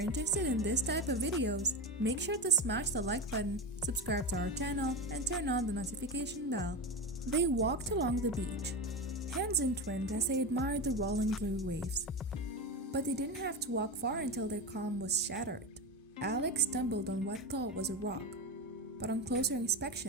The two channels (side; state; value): both; normal; correlation 0.19